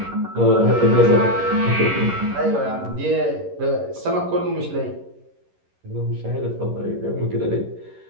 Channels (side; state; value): left; late; 11 ms